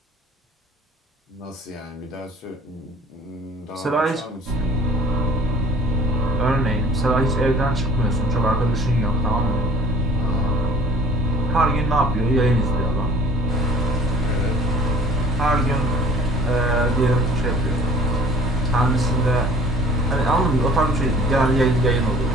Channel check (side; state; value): both; normal; correlation 0.51